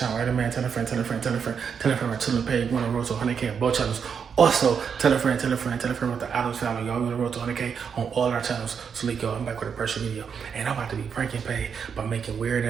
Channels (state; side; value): quieter; left; 6.8 dB